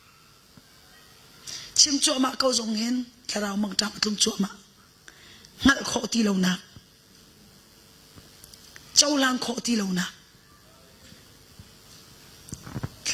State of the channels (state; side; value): identical; both; correlation 1.00